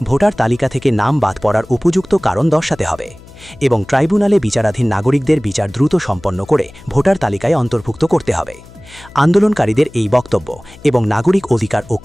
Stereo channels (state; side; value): noise; left; hum, 21 dB below the sound